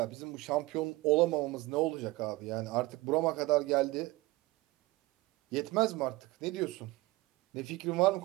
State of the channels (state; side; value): quieter; left; 20.8 dB